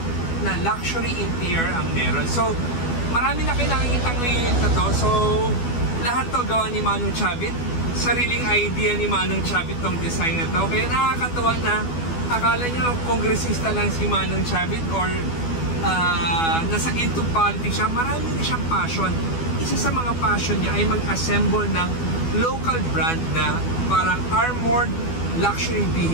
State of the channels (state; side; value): late; right; 12 ms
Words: na luxury interior ang meron. So marami na kayo nakikita ngayon na to. So lahat to gawa ni Manong Chabit. Sariling idea ni Manong Chabit tong design na to. Kaya nakakatawa na akala nyo kongresista lang si Manong Chabit or nasa into politics siya. Marami na siyang passion. Isa sa mga passion niya ay mag-assemble ng local brand na parang armored luxury